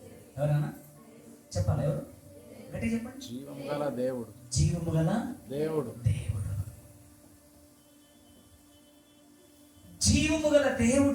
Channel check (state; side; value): identical; both; correlation 1.00